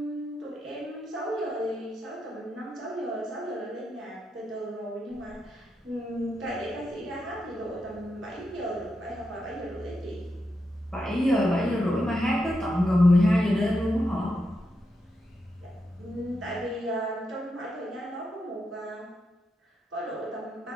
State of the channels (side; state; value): both; normal; correlation 0.84